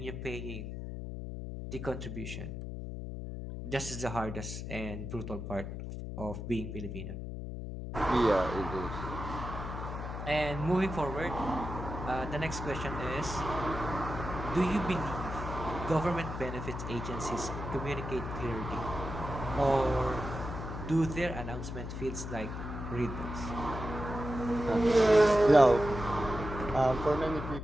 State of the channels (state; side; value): noise; left; hum, 7 dB below the sound